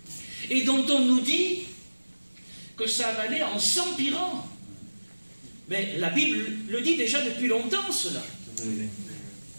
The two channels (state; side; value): inverted; both; correlation -1.00